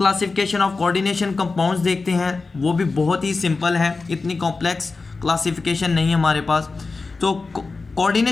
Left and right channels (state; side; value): quieter; right; 4.0 dB